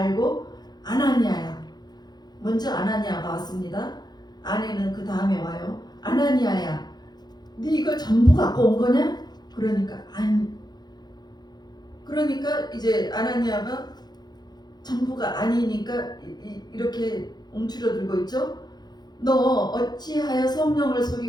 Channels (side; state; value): right; late; 0.20 ms